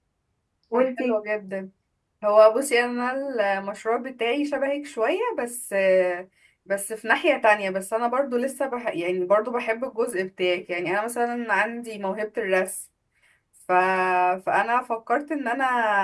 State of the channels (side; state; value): both; identical; correlation 1.00